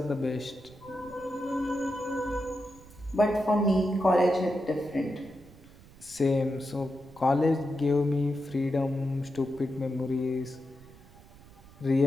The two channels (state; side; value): noise; right; rumble, 22 dB below the sound